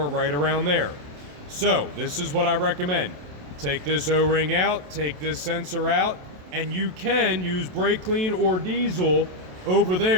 right around there. So this is what I recommend. Take this O-ring out, take this sensor out, and you can use brake clean or diesel over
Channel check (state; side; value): late; left; 27 ms